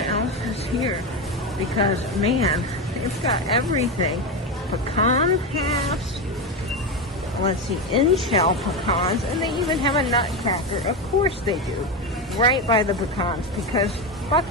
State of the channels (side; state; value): both; normal; correlation 0.14